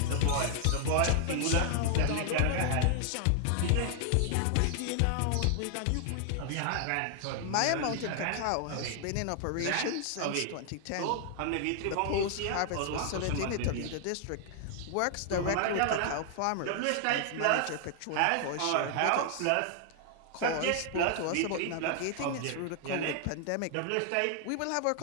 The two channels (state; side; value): different; both; correlation 0.00